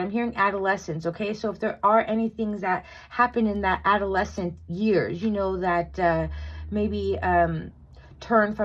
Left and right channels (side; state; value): both; identical; correlation 1.00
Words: hearing adolescence, okay? So if there are any things that happen in that adolescent years, that maybe turn